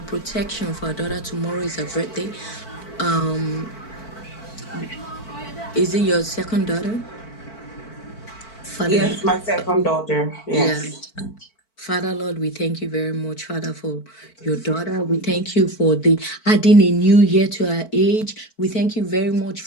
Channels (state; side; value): late; right; 4.5 ms